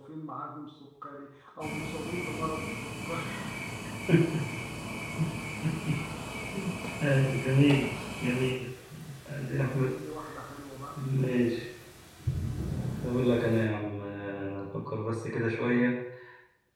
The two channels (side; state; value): both; identical; correlation 1.00